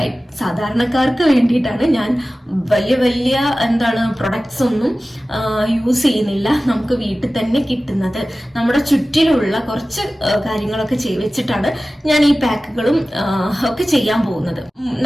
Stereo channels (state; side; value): normal; both; correlation 0.96